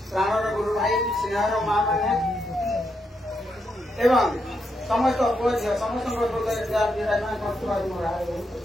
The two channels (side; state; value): both; normal; correlation 0.81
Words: प्राणर गुरु भाई स्नेहर माँ मैंने एवं समस्त समस्त